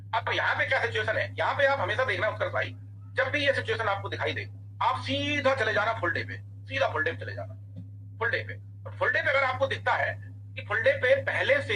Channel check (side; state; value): both; identical; correlation 1.00